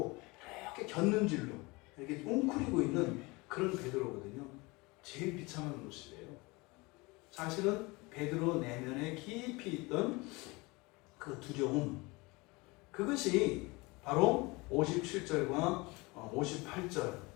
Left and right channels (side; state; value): right; quieter; 24.7 dB